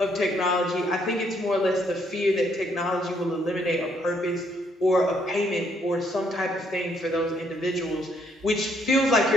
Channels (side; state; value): both; normal; correlation 0.71